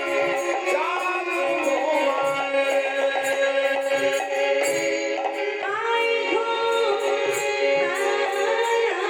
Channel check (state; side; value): identical; both; correlation 1.00